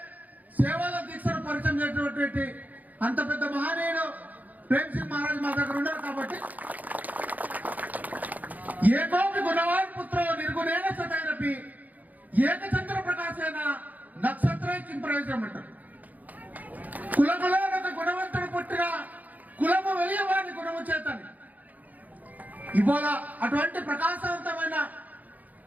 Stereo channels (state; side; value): late; left; 0.079 ms